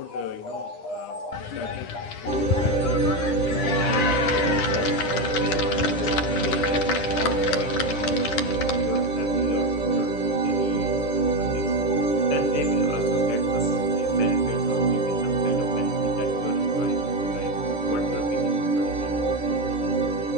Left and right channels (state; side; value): late; right; 9.9 ms